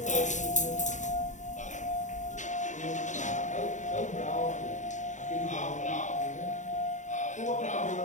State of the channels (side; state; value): right; late; 0.35 ms